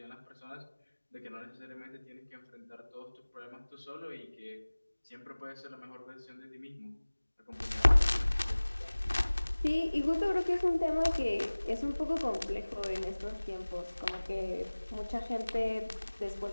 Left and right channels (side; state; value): both; inverted; correlation -1.00